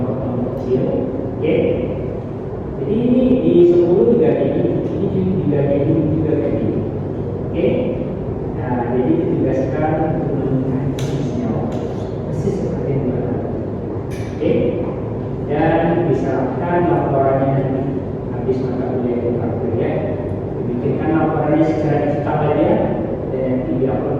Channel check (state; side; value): identical; both; correlation 1.00